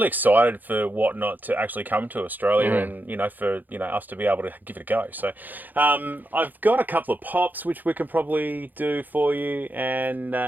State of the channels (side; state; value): left; late; 0.085 ms